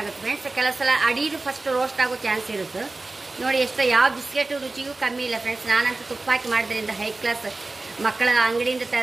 ಫ್ರೆಂಡ್ಸ್. ಕೆಲವು ಸಲ ಅಡಿದು ಫಸ್ಟ್ ರೋಸ್ಟ್ ಆಗೋ ಚಾನ್ಸ್ ಇರುತ್ತೆ. ನೋಡಿ ಎಷ್ಟು ಯಾವ ಬಿಸ್ಕೆಟ್ ರುಚಿಗೂ ಕಮ್ಮಿ ಇಲ್ಲ ಫ್ರೆಂಡ್ಸ್. ನಾನಂತೂ ತುಪ್ಪ ಹಾಕಿ ಮಾಡೋದ್ರಿಂದ ಹೈ ಕ್ಲಾಸ್ ಮಕ್ಕಳ ಅಂಗಡಿಯಿಂದ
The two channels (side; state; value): left; quieter; 3.3 dB